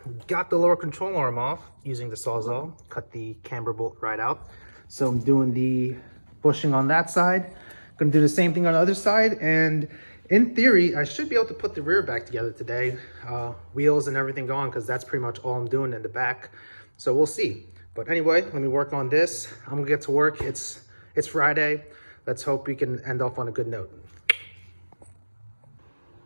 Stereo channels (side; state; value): both; inverted; correlation -1.00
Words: Got the lower control arm off using the Sawzall, cut the camber bolt right out. So I'm doing the bushing on that side. Gonna do the same thing on the other side, and in theory I should be able to put the rear back together today, wheels and everything gone, because that's pretty much all I'm doing in the back. So we'll see. But anyway, let me work on this. I'm gonna get to work. It's Friday. Let's hope we can end off on a good note.